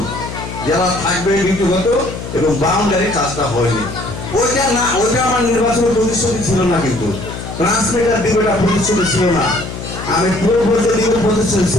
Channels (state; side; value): noise; left; hum, 9 dB below the sound